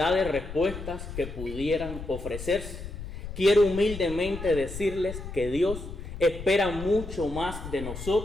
de respuestas que pudieran ofrecerse, quiero humildemente decirles que Dios espera mucho más de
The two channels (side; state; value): left; noise; rumble, 10 dB below the sound